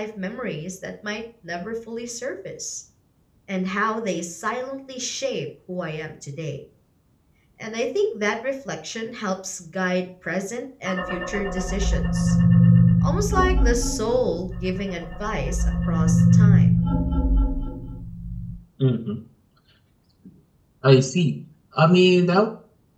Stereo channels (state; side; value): identical; both; correlation 1.00